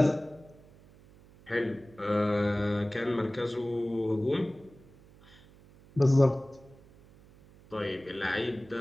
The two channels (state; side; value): noise; right; hum, 25 dB below the sound